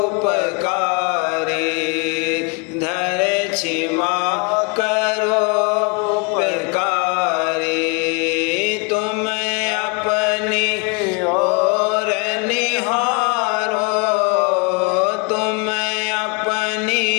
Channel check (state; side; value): quieter; right; 32.1 dB